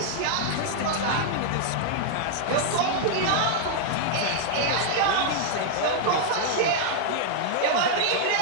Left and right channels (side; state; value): both; different; correlation -0.01